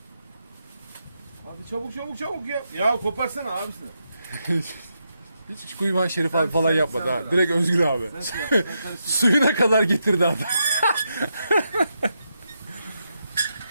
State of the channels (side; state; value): both; inverted; correlation -0.83